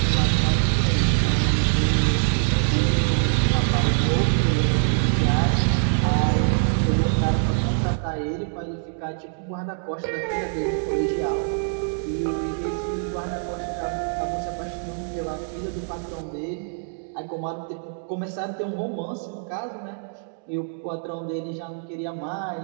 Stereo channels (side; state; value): left; silent; digital silence